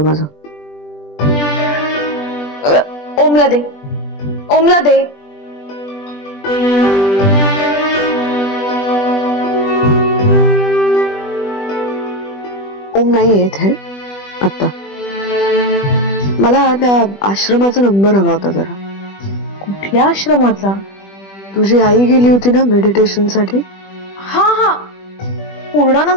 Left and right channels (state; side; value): late; right; 20 ms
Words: माझं. ओमला दे, ओमला दे. ओम नाही येत है आता. मला त्या आश्रमाचा नंबर हवा होता जरा. कुठल्या आश्रमाचा? तुझी आई गेली होती ना मेडिटेशन साठी. हा हा,